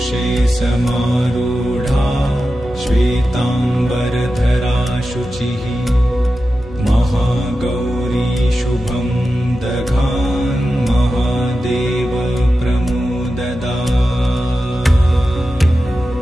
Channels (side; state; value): both; normal; correlation 0.92